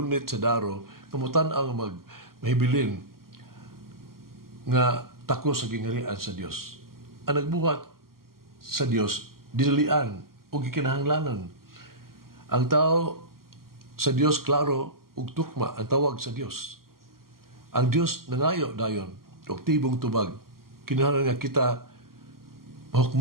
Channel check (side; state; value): left; late; 0.92 ms